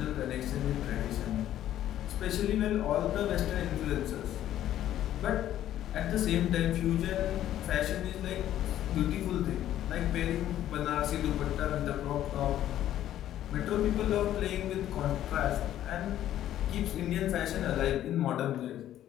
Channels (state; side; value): quieter; right; 12.2 dB